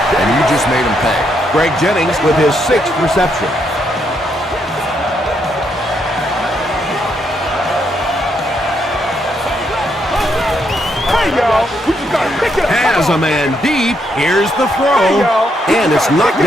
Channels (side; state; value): both; normal; correlation 0.76